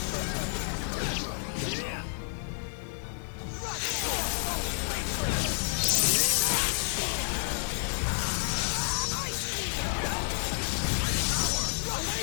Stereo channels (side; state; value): right; silent; digital silence